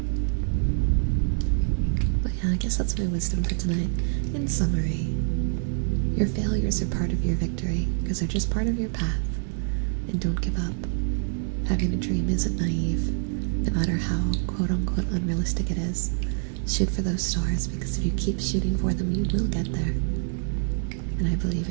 But yeah, I guess that's my wisdom for tonight. In summary, your failures are part of your victory, because they're just part of your path. And don't give up. Having a dream isn't naive, no matter how quote-unquote unrealistic it is. Shoot for those stars, because if you keep shooting for them, you will get there. And I believe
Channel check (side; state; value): left; silent; 61 dB below the other